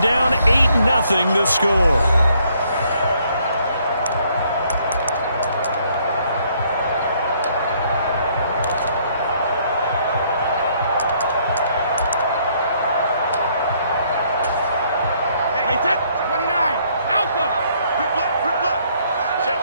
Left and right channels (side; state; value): both; inverted; correlation -0.67